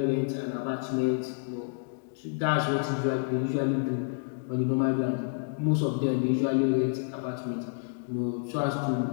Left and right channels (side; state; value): right; silent; digital silence